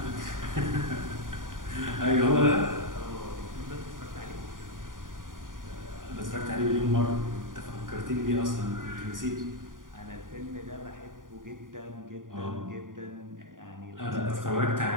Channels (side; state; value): left; late; 0.89 ms